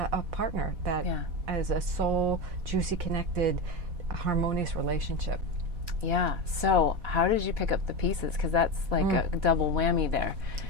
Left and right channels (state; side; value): late; left; 4.1 ms